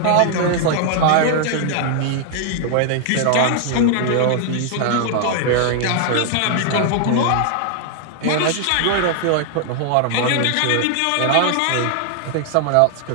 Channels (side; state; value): both; different; correlation 0.00